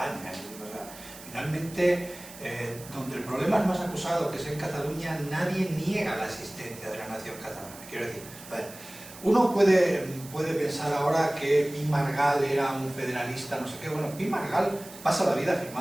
O sea, finalmente, donde el problema es más acusado, que es en Cataluña, nadie niega la existencia de la nación catalana. Quiero decir, a ver, uno puede pensar ahora que Pi Margall era un federalista, no sé qué. Bueno, Pi Margall pasa la vida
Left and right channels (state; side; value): noise; right; hiss, 17 dB below the sound